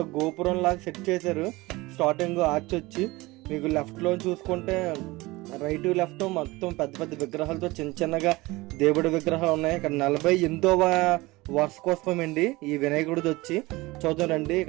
గోపురం లాగా సెట్ చేశారు. స్టార్టింగ్ ఆర్చ్ వచ్చి మీకు లెఫ్ట్ లో చూసుకుంటే రైట్ లెఫ్ట్ మొత్తం పెద్ద పెద్ద విగ్రహాలతో చిన్న చిన్నగా దేవుడి విగ్రహాలు ఉన్నాయి. ఇక్కడ 48వ వార్షికోత్సవం అండి ఈ వినాయకుడిది వచ్చి. చూద్దాం రండి.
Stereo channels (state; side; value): quieter; left; 21.3 dB